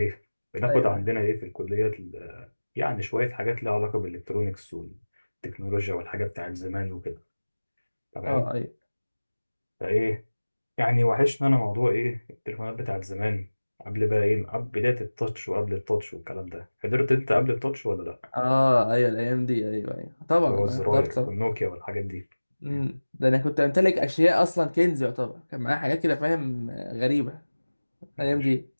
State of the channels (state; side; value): inverted; both; correlation -1.00